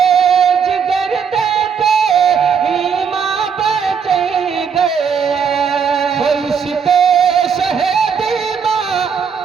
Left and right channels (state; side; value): quieter; left; 6.7 dB